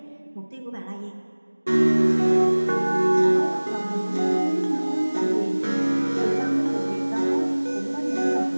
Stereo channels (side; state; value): both; inverted; correlation -1.00